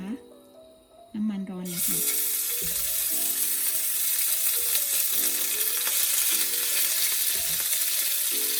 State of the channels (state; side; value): identical; both; correlation 1.00